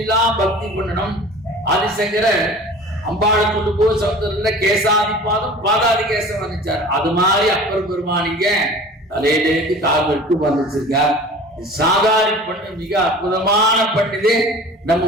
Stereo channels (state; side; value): normal; both; correlation 0.41